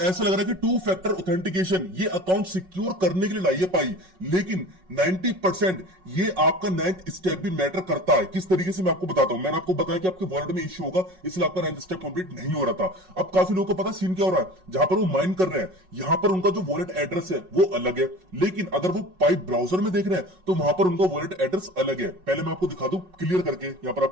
लग रहा है कि 2 फैक्टर ऑथेंटिकेशन ये अकाउंट सिक्योर करने के लिए लाई है पाई, लेकिन 90% ये आपका 9th स्टेप भी मैटर करता है। किस तरीके से मैं आपको बताता हूं। मैंने आपको बताया कि आपके वॉलेट में इश्यू होगा, इसलिए आपका 9th स्टेप कंप्लीट नहीं हो रहा था। अब काफी लोगों को पता सीन क्या हो रहा है, जहां पर वो माइन कर रहे हैं यहां पर उनका जो वॉलेट एड्रेस है वो अलग है, लेकिन अगर वो पाई ब्राउजर में देख रहे हैं तो वहां पर उनका वॉलेट एड्रेस अलग है। पहले मैं आपको दिखा दूं क्लियर करके, यहां पर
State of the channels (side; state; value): left; late; 5.4 ms